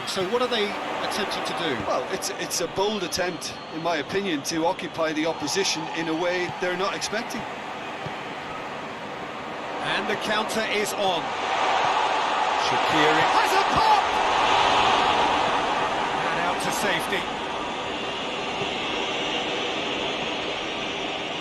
So what are they attempting to do? Well, it's a bold attempt, in my opinion, to occupy the opposition in a way they're not expecting. And the counter is on. Shaqiri has a pop! And out to safety.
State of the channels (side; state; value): both; identical; correlation 1.00